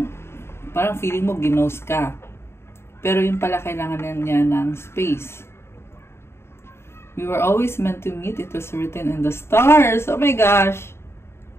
parang feeling mo ginost ka. Pero yun pala kailangan niya ng space. We were always meant to meet. It was written in the stars. Oh my gosh!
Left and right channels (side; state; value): right; late; 0.12 ms